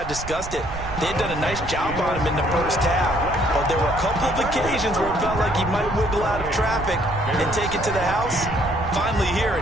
discussed it. They had done a nice job on him in the first half. But there were a couple of occasions where it felt like he might wiggle out of traffic and take it to the house. Finally here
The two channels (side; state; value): right; noise; rumble, 10 dB below the sound